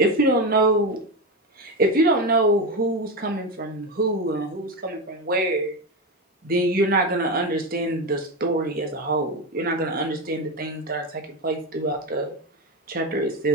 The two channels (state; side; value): normal; both; correlation 0.15